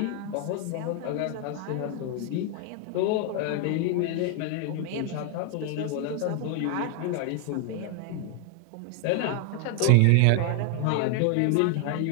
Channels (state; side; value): different; both; correlation 0.00